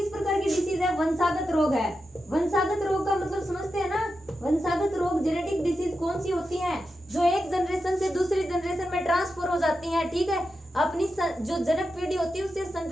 प्रकार की डिसीज है, वंशागत रोग है। वंशागत रोग का मतलब समझते हैं ना, वंशागत रोग जेनेटिक डिसीज कौन सी होती हैं, जो एक जनरेशन से दूसरी जनरेशन में ट्रांसफर हो जाती हैं, ठीक है। अपनी जो जनक पीढ़ी होती है उससे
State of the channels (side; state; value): both; normal; correlation 0.89